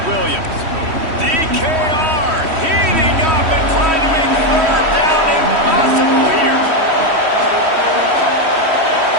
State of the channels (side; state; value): left; late; 3.1 ms